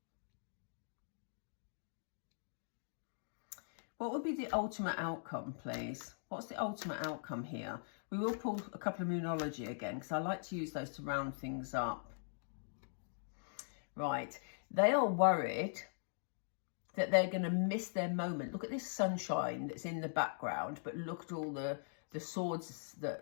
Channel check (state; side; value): silent; right; digital silence